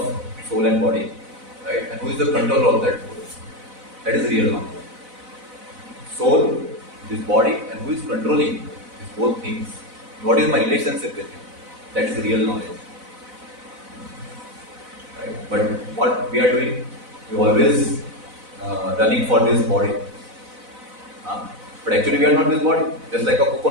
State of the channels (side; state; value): left; late; 4.0 ms